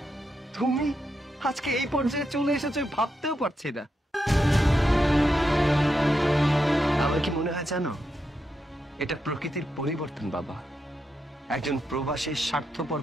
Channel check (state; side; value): normal; both; correlation 0.84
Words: তুমি আজকে এই পর্যায়ে চলে এসেছো ভাবতেও পারছি না। আমার কি মনে হয় জানো, এটা প্রকৃতির পরিবর্তন বাবা। একজন প্রবাসী স্বার্থপর